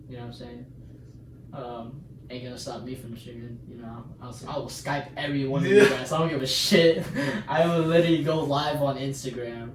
You know what I'm saying? Ain't gonna stop me from streaming. You know, I will Skype every one of you guys. I don't give a shit. I will literally go live on Instagram.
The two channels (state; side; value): identical; both; correlation 1.00